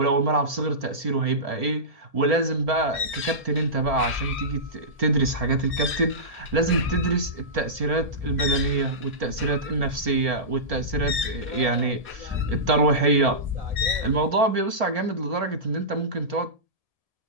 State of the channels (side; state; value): left; late; 1.7 ms